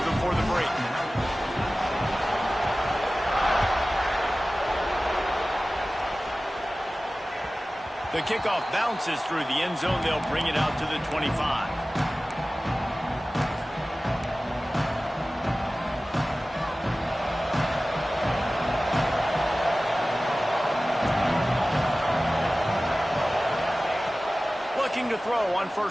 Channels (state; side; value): normal; both; correlation 0.97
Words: before the break. The kickoff bounces through the end zone. They'll bring it out to the 25. Pitching to throw on